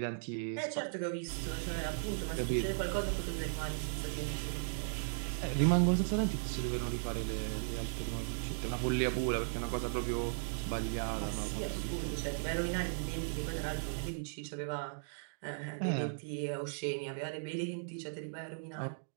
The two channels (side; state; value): left; silent; digital silence